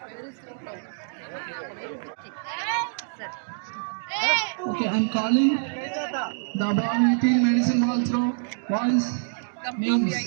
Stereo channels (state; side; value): silent; left; digital silence